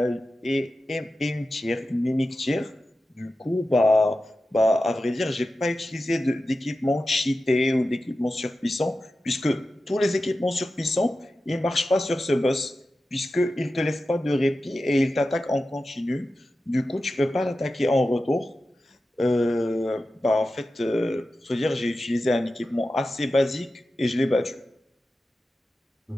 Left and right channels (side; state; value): both; normal; correlation 0.93